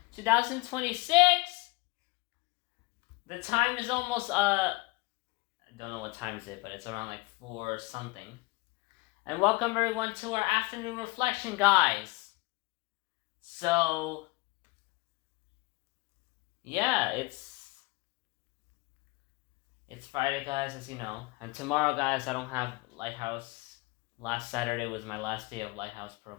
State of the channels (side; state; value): right; quieter; 25.0 dB